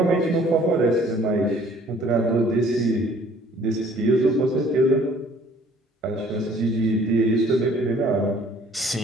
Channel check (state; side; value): normal; both; correlation 0.56